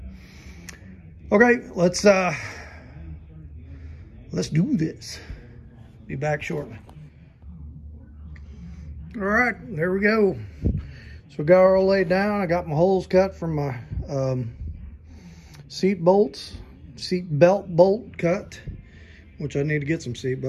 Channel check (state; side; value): identical; both; correlation 1.00